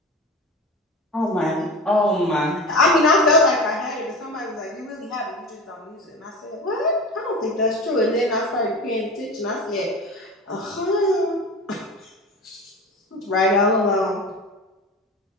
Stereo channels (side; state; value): both; normal; correlation 0.31